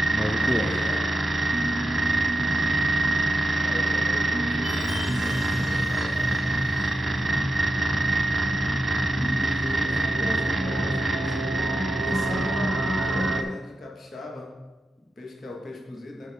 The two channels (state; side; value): normal; both; correlation 0.89